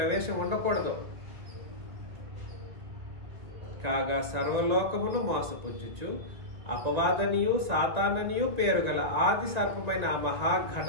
ఉండకూడదు. కాగా సర్వలోకమును మోసపుచ్చుచు అపవాదనియు సాతాననియు పేరు గల ఆది సర్పమైన ఆ మహా ఘట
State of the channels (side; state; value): left; late; 2.0 ms